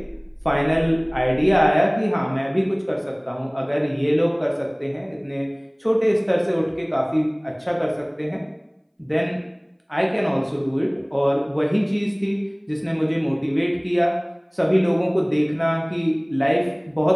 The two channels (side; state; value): both; identical; correlation 1.00